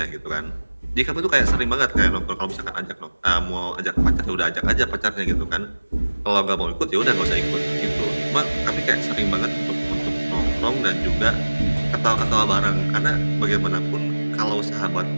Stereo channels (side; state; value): both; inverted; correlation -1.00